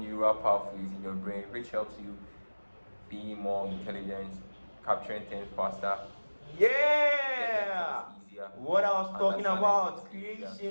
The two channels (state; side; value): inverted; both; correlation -1.00